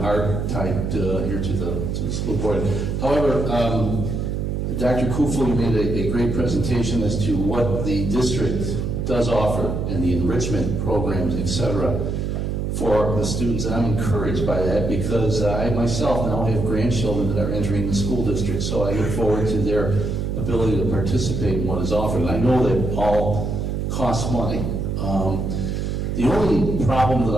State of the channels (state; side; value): noise; right; hum, 1 dB below the sound